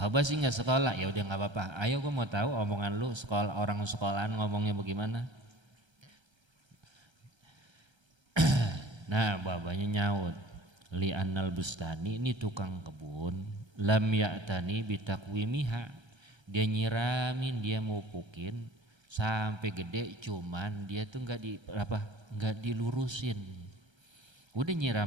sih nggak sekolah, ya udah nggak apa-apa. Ayo gue mau tahu omongan lu, sekolah orang sekolahan ngomongnya bagaimana? Nah, bapaknya nyaut. Li annal bustani, ini tukang kebun, lam ya'tani bitakwimiha. Dia nyiramin, dia mupukin sampai gede, cuman dia tuh nggak dilurusin. Udah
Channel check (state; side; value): late; left; 1.3 ms